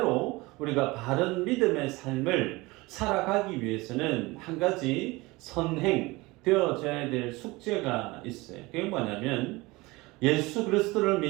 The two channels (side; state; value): left; quieter; 22.3 dB